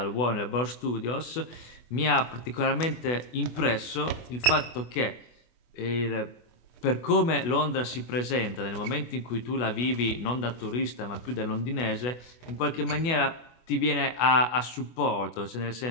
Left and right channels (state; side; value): late; right; 24 ms